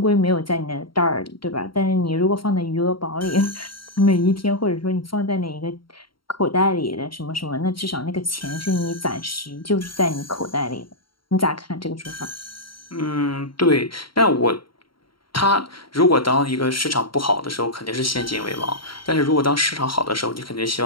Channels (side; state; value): right; late; 0.73 ms